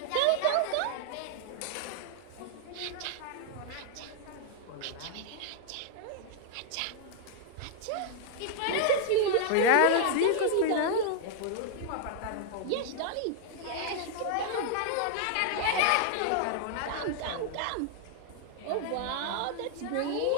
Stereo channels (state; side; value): different; both; correlation 0.00